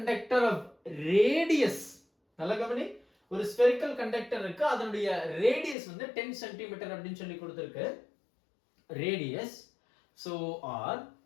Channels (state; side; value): drops out; right; at 5.8 s